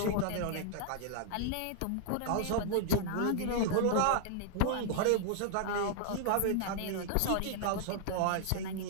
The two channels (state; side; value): different; both; correlation -0.01